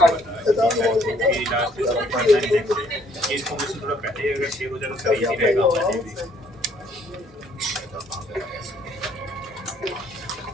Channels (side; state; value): both; normal; correlation 0.64